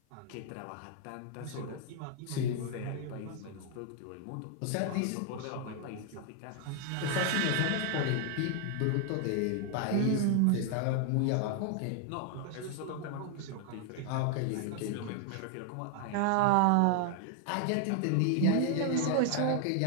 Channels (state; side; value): different; both; correlation 0.00